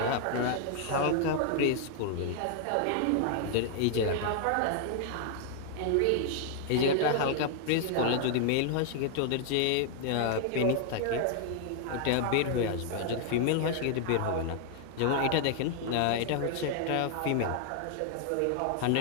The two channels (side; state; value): both; different; correlation 0.00